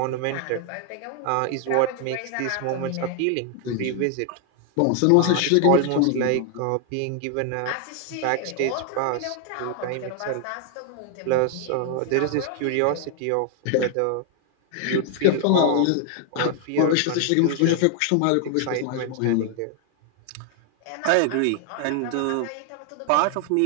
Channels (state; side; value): different; both; correlation 0.00